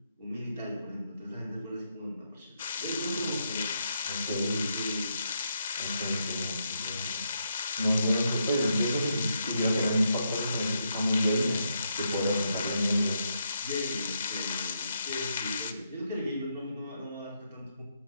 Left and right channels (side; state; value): both; inverted; correlation -0.79